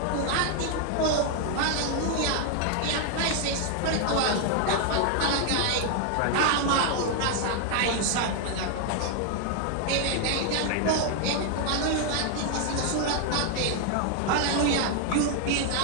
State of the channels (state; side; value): different; both; correlation 0.00